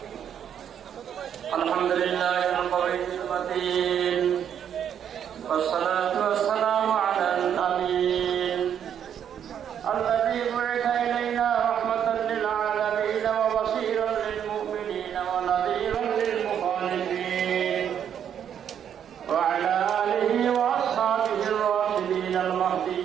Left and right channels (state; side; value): quieter; left; 8.9 dB